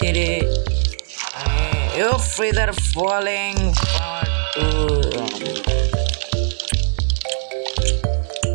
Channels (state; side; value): silent; left; 58 dB below the other